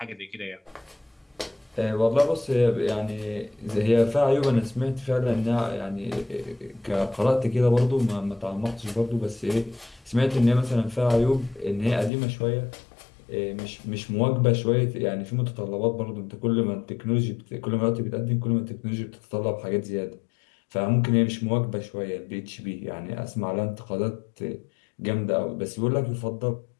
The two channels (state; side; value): drops out; right; at 12.1 s